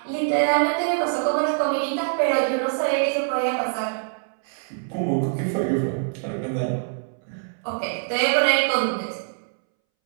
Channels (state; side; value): silent; left; 62 dB below the other